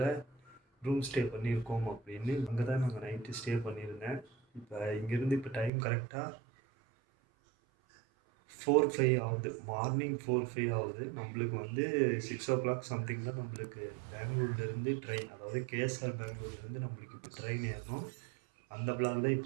ரூம் ஸ்டே பண்ணியிருக்கோம் அப்படின்னு. அங்கே தான் நாங்கள் நைட்டு ஸ்டே பண்ணியிருந்தேன். இப்போ இங்கேருந்து இப்போ டைம் கரெக்டாக 4:05 ஆகுது. மார்னிங் 4:05 ஆகுது. நம்மளுக்கு வந்து 6:00 சம்திங் தான் நம்மளுக்கு பெங்களூர்லேருந்து ட்ரெயின், அதாவது கேஎஸ்ஆர் பெங்களூர்லேருந்து நம்மளுக்கு இப்போ ட்ரெயின் ஏறணும். அந்த பிளாக் தான்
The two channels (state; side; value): drops out; left; at 5.7 s